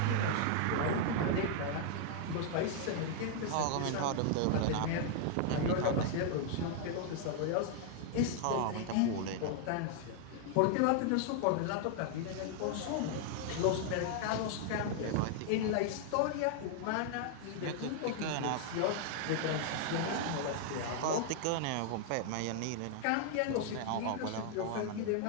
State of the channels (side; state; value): both; different; correlation 0.00